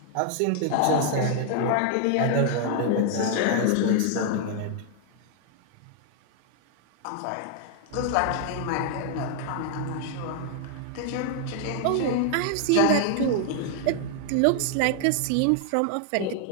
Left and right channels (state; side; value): different; both; correlation 0.00